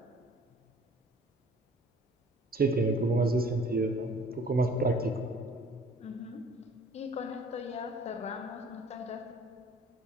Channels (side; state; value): both; normal; correlation 0.52